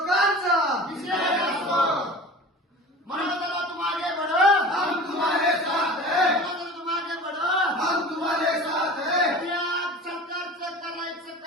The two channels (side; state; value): both; normal; correlation 0.38